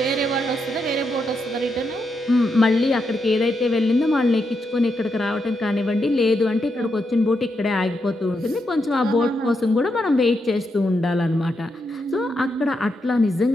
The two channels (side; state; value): both; normal; correlation 0.83